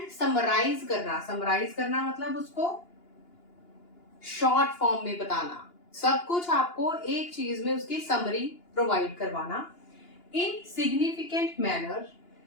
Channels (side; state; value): right; late; 2.9 ms